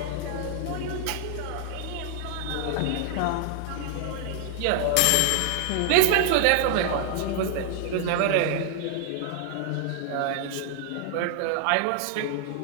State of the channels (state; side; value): different; both; correlation 0.00